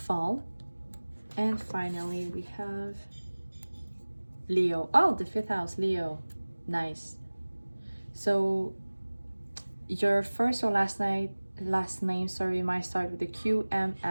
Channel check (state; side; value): inverted; both; correlation -1.00